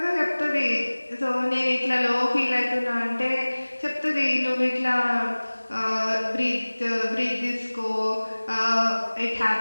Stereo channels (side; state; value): both; inverted; correlation -1.00